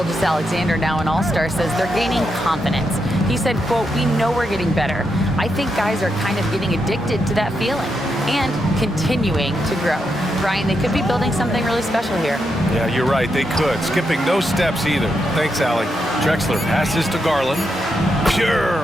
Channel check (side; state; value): both; normal; correlation 0.83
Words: now an all-star, says they're gaining confidence. He said, quote, "We know we're getting better. I think guys are kind of getting addicted to that feeling and continuing to grow." Brian, they could be building something really special here. Yeah, you're right. They could. Skipping no steps either. Thanks, Allie. Drexler passes to Garland. Pure